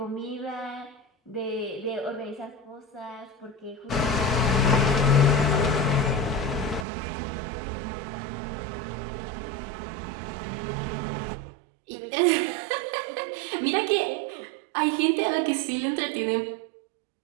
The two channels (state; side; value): drops out; left; at 6.9 s